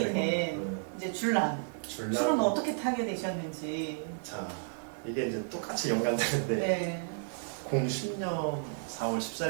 된 된 이제 줄남. 줄라. 술은 어떻게 타게 되셨는지. 자, 이게 이제 똑같이 연관되는데 네. 2010년 4월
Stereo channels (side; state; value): left; silent; digital silence